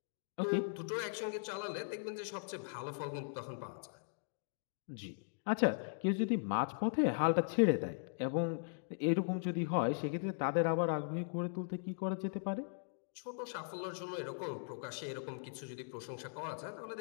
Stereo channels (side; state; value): right; silent; digital silence